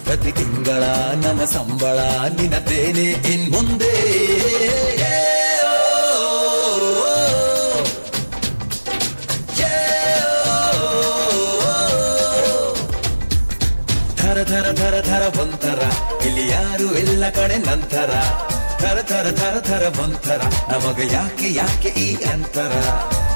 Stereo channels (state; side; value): inverted; both; correlation -1.00